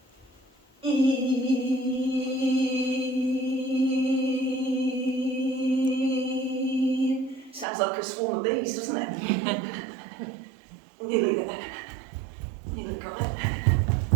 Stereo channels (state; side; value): drops out; left; at 7.7 s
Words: Sounds like a swarm of bees, doesn't it? Nearly there. Nearly got it.